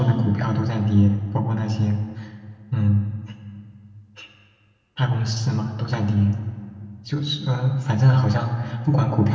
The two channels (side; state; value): both; identical; correlation 1.00